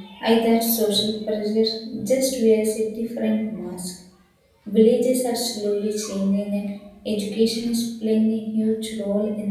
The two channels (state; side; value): identical; both; correlation 1.00